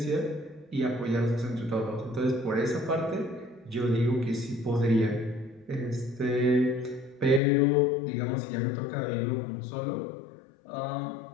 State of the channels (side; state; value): right; drops out; at 7.4 s